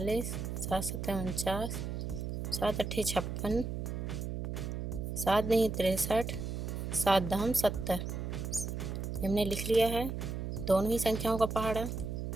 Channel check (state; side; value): noise; right; hum, 4 dB below the sound